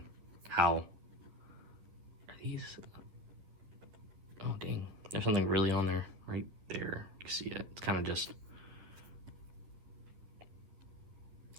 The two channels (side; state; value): left; late; 11 ms